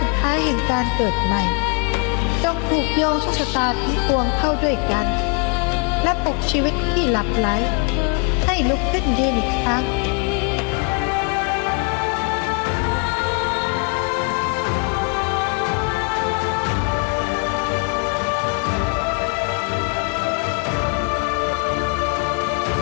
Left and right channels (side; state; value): right; quieter; 36.8 dB